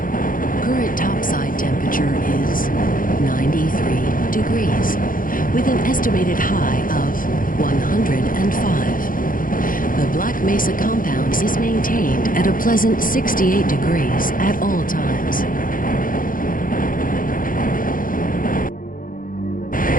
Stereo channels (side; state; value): right; late; 0.40 ms